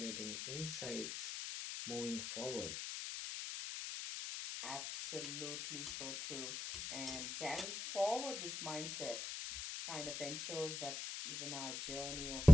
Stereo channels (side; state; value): left; noise; hiss, 6 dB below the sound